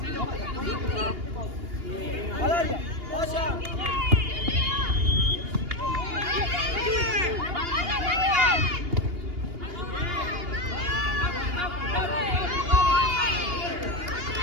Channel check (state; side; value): late; left; 2.8 ms